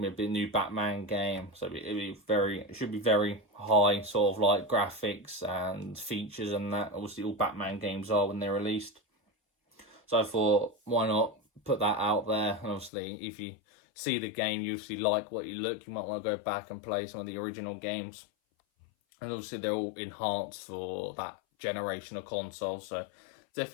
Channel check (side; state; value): right; drops out; at 12.9 s